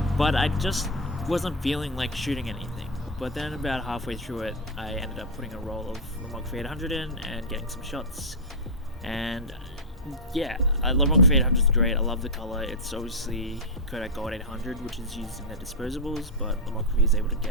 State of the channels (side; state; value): both; normal; correlation -0.03